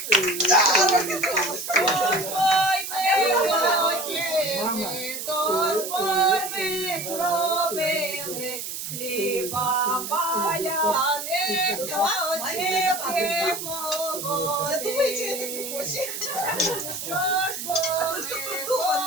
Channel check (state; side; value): noise; right; hiss, 6 dB below the sound